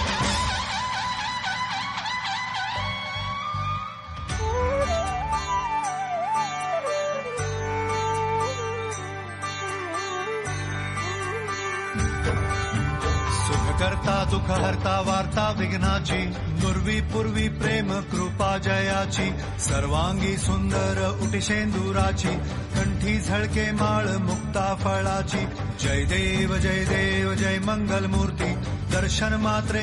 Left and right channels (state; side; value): identical; both; correlation 1.00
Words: करता दुःख हरता वार्ता विघ्नाची नुर्वी पूर्वी प्रेम कृपा जयाची सर्वांगी सुंदर उटिशेंदुराची कंठी झळके माळ मुक्ता फळाची जय देव जय मंगल मूर्ती दर्शन मात्रे